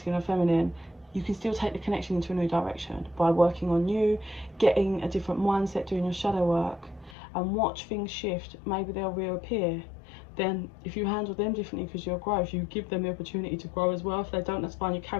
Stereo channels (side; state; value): right; drops out; at 7.2 s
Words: or feminine, you can still take the connection into a new direction by working on you, getting a different mindset, doing your shadow work, and watch things shift. Maybe they'll reappear. Then if you handle them differently because you're growth, you give them the opportunity to grow as well. If they don't, that's fine, you